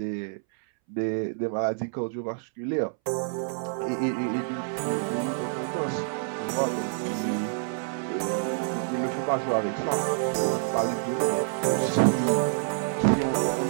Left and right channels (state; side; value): silent; left; 60 dB below the other